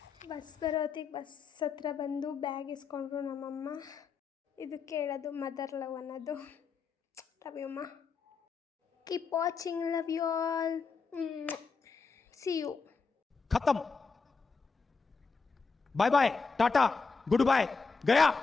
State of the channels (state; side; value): quieter; right; 4.8 dB